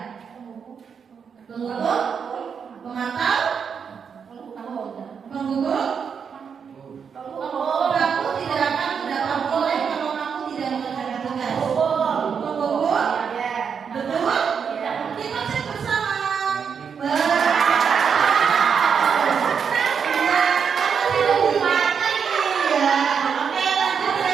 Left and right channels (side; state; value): left; quieter; 6.7 dB